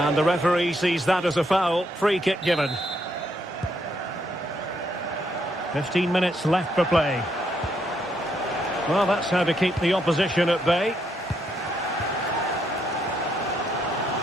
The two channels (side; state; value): both; normal; correlation 0.75